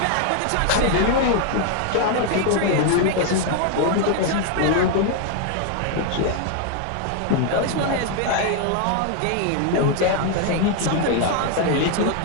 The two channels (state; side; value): different; both; correlation 0.00